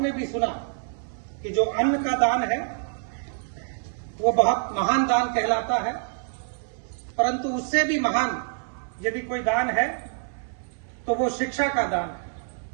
भी सुना कि जो अन्न का दान है वो बहुत महान दान कहलाता है, परंतु उससे भी महान यदि कोई दान है तो वो शिक्षा का दान है।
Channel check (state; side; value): silent; left; 58 dB below the other